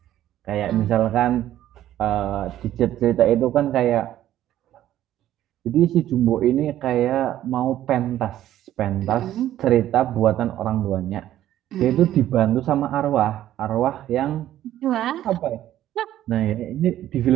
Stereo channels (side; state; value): left; quieter; 12.7 dB